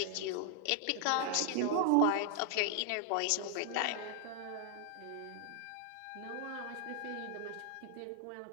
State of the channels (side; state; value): both; different; correlation 0.00